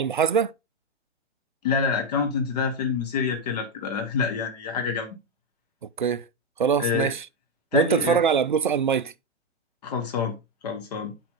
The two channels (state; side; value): normal; both; correlation 0.06